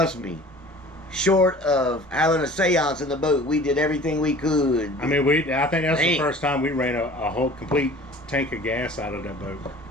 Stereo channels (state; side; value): normal; both; correlation 0.45